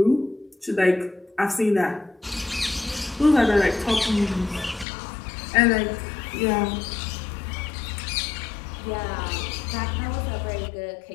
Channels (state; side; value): drops out; right; at 4.9 s